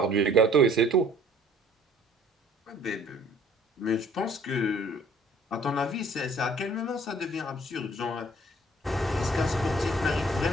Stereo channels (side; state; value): both; normal; correlation 0.56